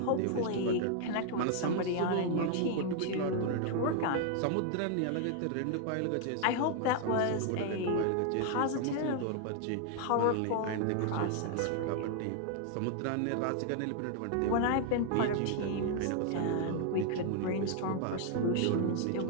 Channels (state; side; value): different; both; correlation 0.00